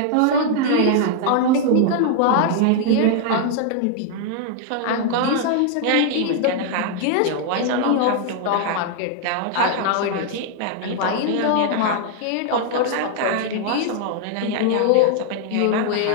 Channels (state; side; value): different; both; correlation 0.00